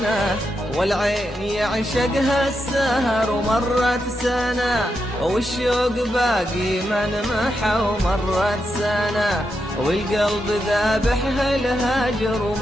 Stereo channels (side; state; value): both; normal; correlation 0.85